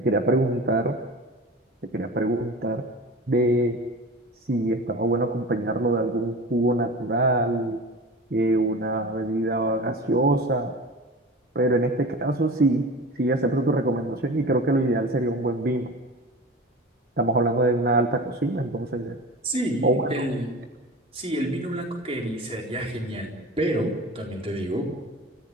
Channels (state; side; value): normal; both; correlation 0.33